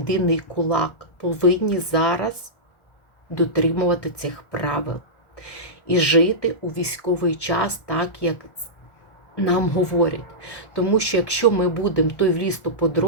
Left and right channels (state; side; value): late; right; 1.4 ms